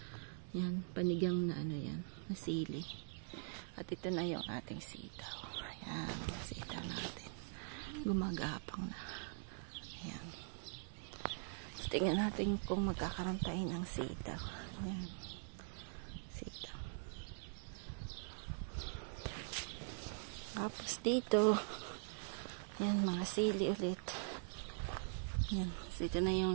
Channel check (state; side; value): silent; left; digital silence